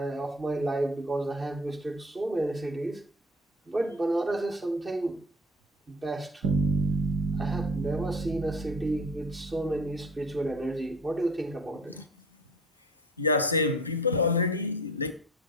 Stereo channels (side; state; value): both; normal; correlation 0.43